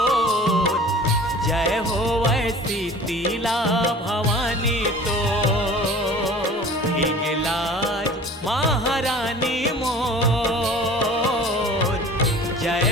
जय हो वैसी शीतला भवानी तो। हिंगलाज महारानी मोर, जय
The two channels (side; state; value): both; normal; correlation 0.43